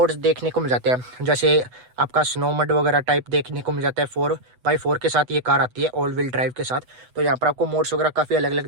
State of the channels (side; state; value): left; late; 8.1 ms